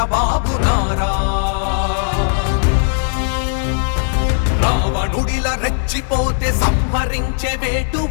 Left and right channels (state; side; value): silent; right; digital silence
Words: నారా. రావణుడిల రెచ్చిపోతే సంహరించే వేటు